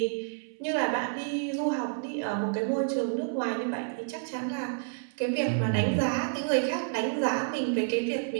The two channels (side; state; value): left; silent; 58 dB below the other